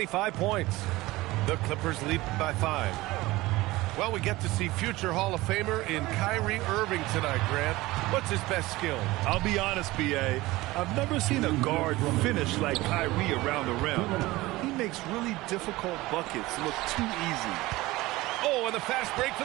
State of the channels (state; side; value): quieter; left; 19.4 dB